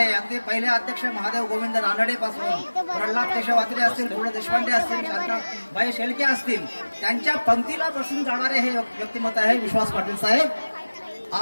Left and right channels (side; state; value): both; inverted; correlation -1.00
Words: अगदी पहिले अध्यक्ष महादेव गोविंद रानडे पासून प्रल्हाद केशव आत्रे असतील, गो देशपांडे असतील, शांताबाई शेळके असतील, त्यांच्या पंक्तीला बसून जाणारे हे व्यक्तिमत्व आहे विश्वास पाटील साहेब.